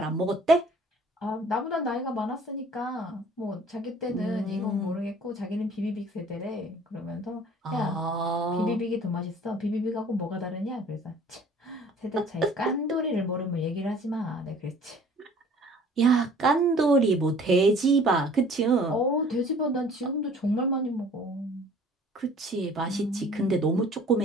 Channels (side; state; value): both; normal; correlation 0.51